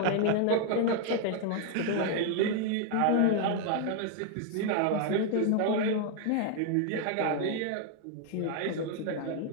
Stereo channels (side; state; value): both; different; correlation 0.00